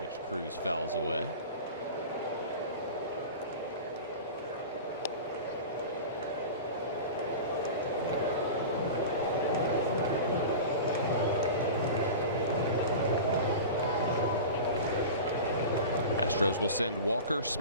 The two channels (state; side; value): inverted; both; correlation -0.32